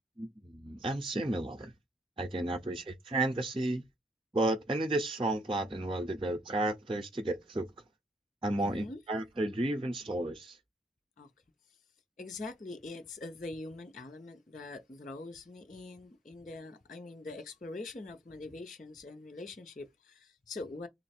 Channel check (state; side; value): normal; both; correlation 0.69